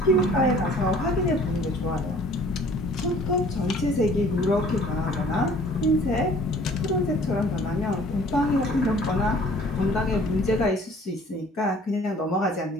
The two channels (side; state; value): both; normal; correlation 0.53